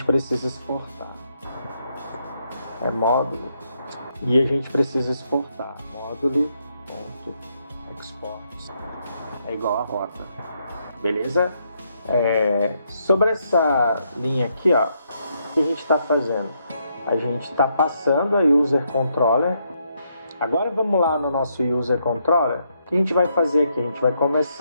precisa exportar. É módulo. E a gente precisa exportar. Módulo.export é igual a rota. Beleza? Sobre essa linha aqui, ó, o que a gente está fazendo? A gente está passando a user controller. Agora vamos lá no nosso user controller. O que a gente vai fazer aqui? A gente vai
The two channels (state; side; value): inverted; both; correlation -0.77